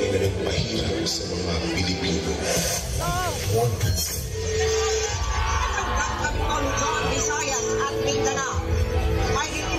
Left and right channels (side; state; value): both; identical; correlation 1.00